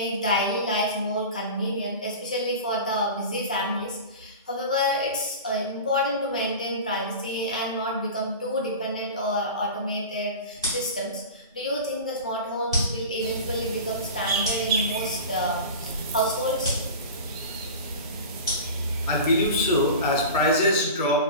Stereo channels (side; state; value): both; inverted; correlation -0.32